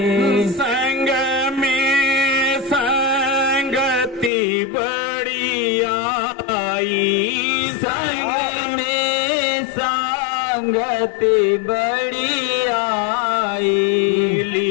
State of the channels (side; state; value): right; drops out; at 4.3 s